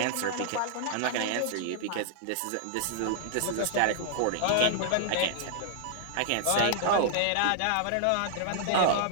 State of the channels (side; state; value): both; different; correlation -0.01